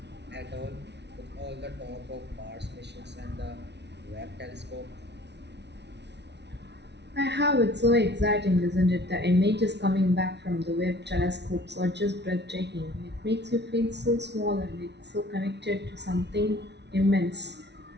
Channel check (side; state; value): left; late; 0.50 ms